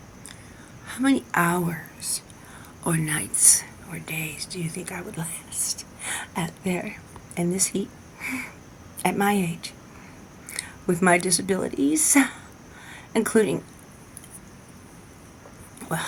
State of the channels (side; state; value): both; identical; correlation 1.00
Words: How many hours or nights or days do you think I would last out there in this heat at my age with my disabilities, including, well,